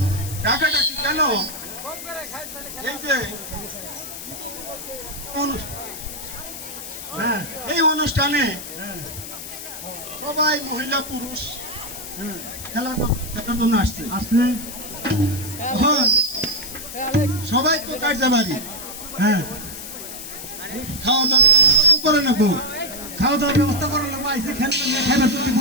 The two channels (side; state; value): left; noise; hiss, 10 dB below the sound